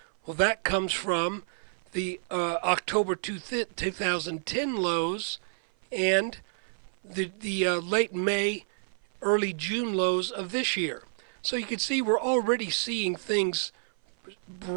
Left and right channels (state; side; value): silent; left; 56 dB below the other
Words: Well, that comes from the October 2010 lows and the late May, early June lows of this year. So you can see we're already seeing things